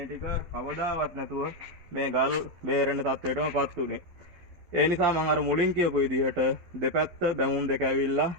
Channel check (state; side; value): late; left; 11 ms